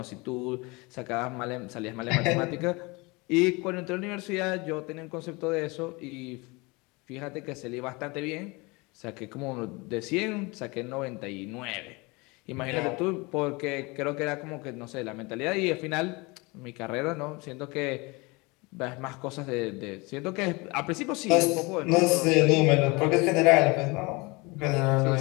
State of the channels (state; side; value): quieter; right; 25.9 dB